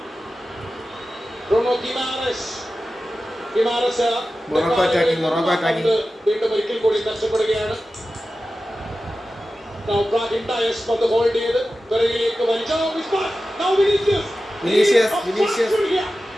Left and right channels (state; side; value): normal; both; correlation 0.94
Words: Bruno Guimaraes. Morocco attacking. വീണ്ടും ഒരിക്കൽ കൂടി നഷ്ടപ്പെടുകയാണ്. Now Brahim Dias പന്ത് ഹോൾഡ് ചെയ്ത് പിറകിലേക്ക് വലിച്ചു. Now